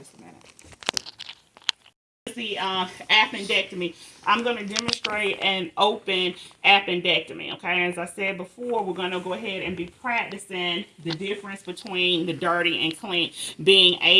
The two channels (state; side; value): identical; both; correlation 1.00